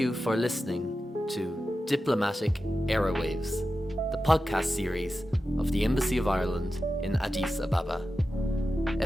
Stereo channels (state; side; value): normal; both; correlation 0.92